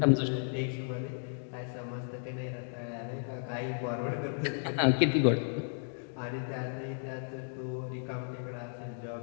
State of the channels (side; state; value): right; silent; digital silence